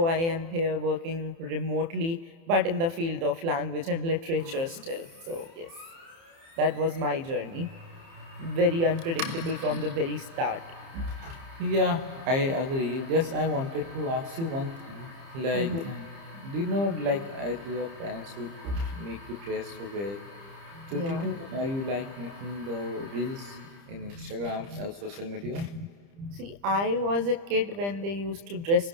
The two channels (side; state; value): left; late; 30 ms